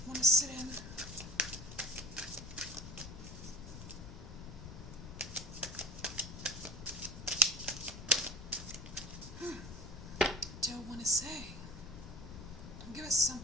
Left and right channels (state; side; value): noise; left; rumble, 11 dB below the sound